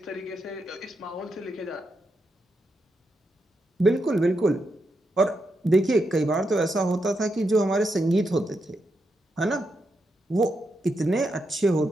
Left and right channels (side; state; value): both; normal; correlation 0.84